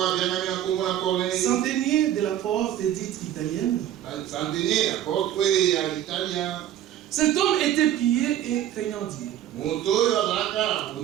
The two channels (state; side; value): quieter; left; 11.4 dB